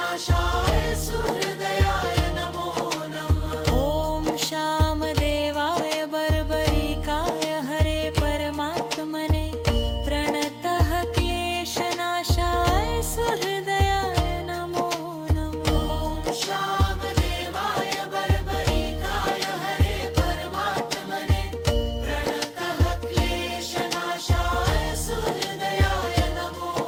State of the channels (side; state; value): both; identical; correlation 1.00